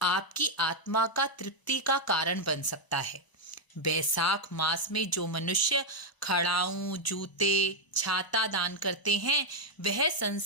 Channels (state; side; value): late; right; 1.0 ms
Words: आपकी आत्मा का तृप्ति का कारण बन सकता है। बैसाख मास में जो मनुष्य खड़ाऊं जूते छाता दान करते हैं, वह